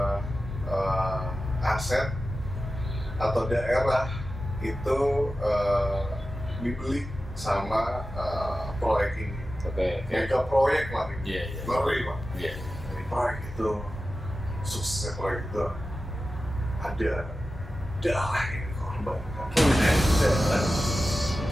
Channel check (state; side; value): normal; both; correlation 0.93